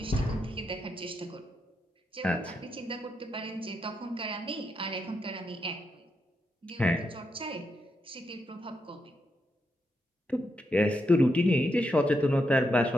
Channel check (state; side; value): normal; both; correlation 0.82